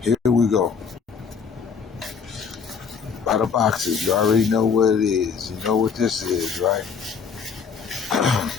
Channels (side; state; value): right; quieter; 6.1 dB